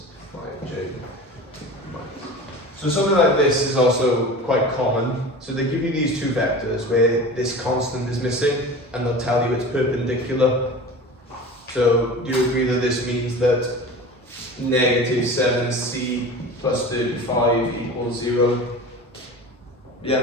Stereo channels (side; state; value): both; normal; correlation 0.35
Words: 5j. So something like this is also quite common. So they give you these two vectors where this constant is missing and they'll tell you it's perpendicular. So do you agree that this means that negative 7c plus 35 equals 0?